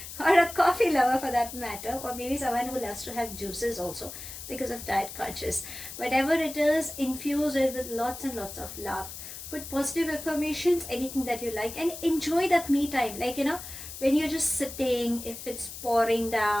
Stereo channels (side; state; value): left; noise; hiss, 11 dB below the sound